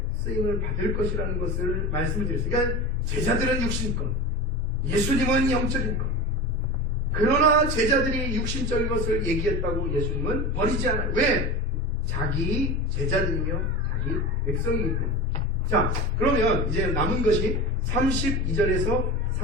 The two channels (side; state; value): both; normal; correlation 0.28